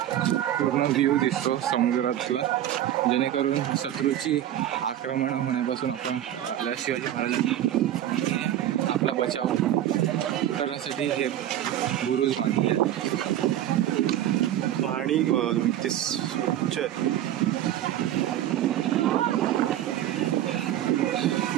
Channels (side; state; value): left; quieter; 12.1 dB